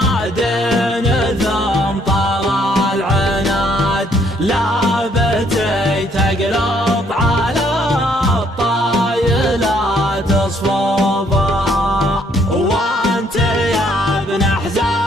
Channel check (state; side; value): normal; both; correlation 0.67